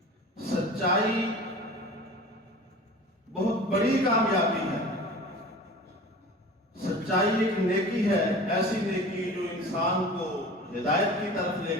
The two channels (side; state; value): both; normal; correlation 0.39